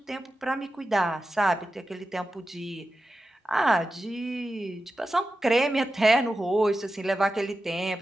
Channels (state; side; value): normal; both; correlation 0.92